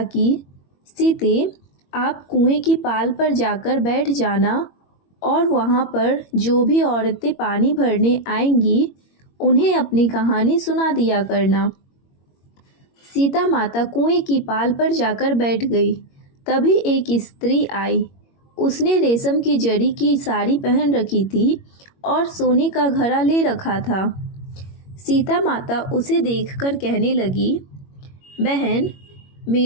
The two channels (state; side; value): late; right; 21 ms